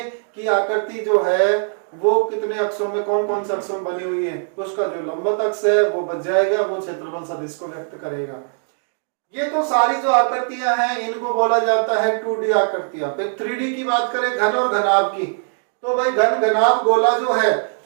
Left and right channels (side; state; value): left; silent; digital silence